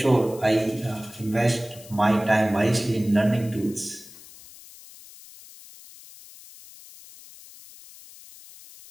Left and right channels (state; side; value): noise; left; hiss, 20 dB below the sound